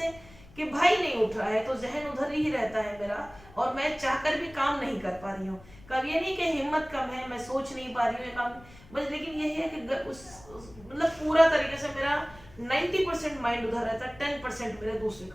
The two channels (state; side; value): noise; left; rumble, 22 dB below the sound